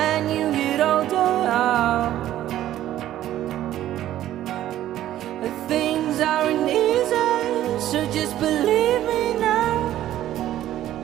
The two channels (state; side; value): quieter; left; 12.9 dB